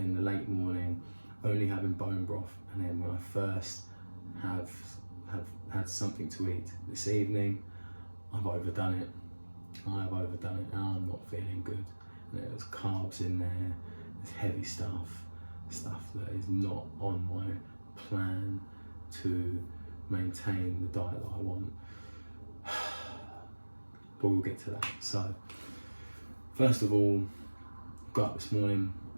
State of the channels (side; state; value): both; inverted; correlation -1.00